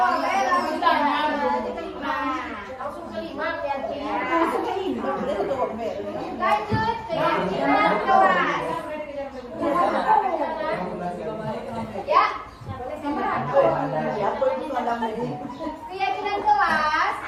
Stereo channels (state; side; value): identical; both; correlation 1.00